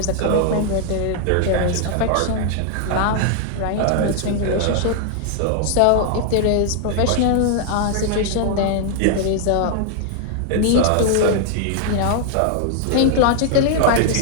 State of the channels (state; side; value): different; both; correlation 0.00